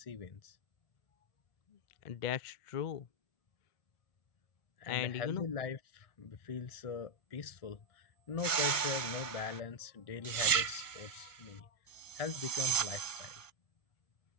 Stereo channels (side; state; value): right; late; 1.5 ms